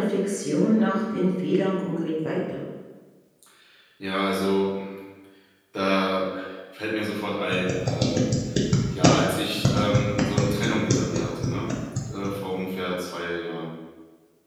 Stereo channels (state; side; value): identical; both; correlation 1.00